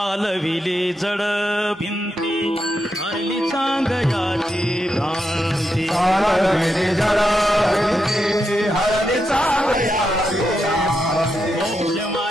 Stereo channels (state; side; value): normal; both; correlation 0.85